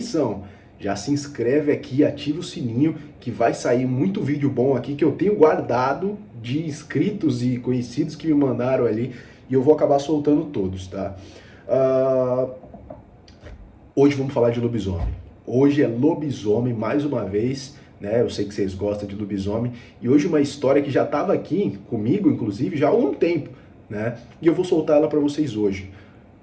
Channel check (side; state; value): both; identical; correlation 1.00